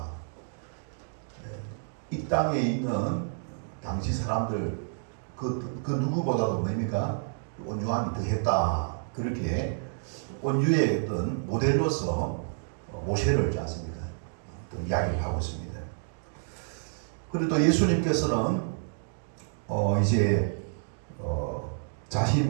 이 땅에 있는 당시 사람들 그 누구보다도 뭡니까? 온유함이 더했다. 그렇게 온유의 어떤 모델로서 모세를 있지 않습니까? 또 이야기를 하고 있습니다. 그리고 또 예수님께서는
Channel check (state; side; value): silent; left; digital silence